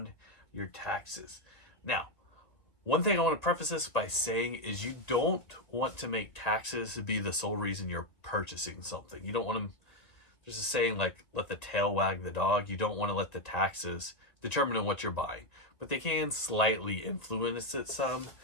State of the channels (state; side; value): late; right; 2.1 ms